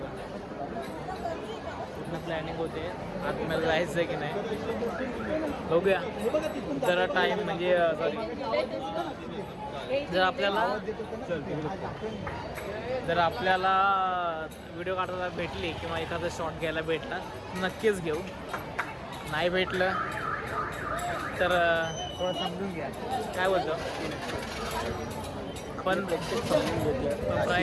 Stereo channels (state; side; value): identical; both; correlation 1.00